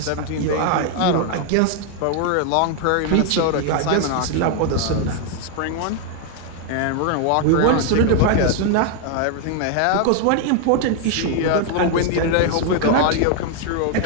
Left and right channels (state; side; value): different; both; correlation 0.00